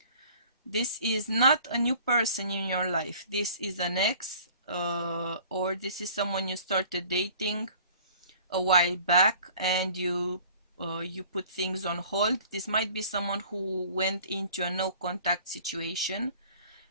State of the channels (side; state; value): both; inverted; correlation -0.50